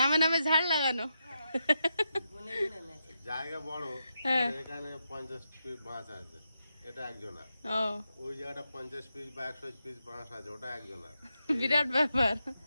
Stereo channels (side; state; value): both; inverted; correlation -0.85